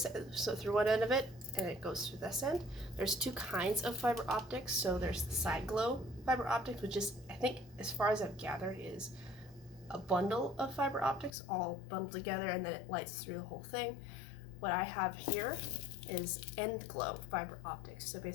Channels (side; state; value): right; drops out; at 11.3 s